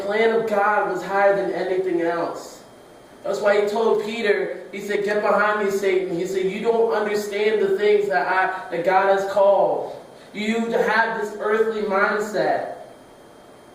of God was higher than anything else. That's why he told Peter, he said, get behind me, Satan. He said, you don't understand the things that God has called. You have this earthly mindset.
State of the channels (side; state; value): both; identical; correlation 1.00